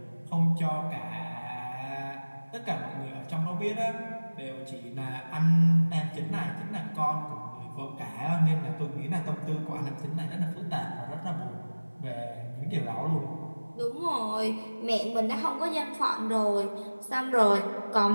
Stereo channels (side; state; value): both; inverted; correlation -1.00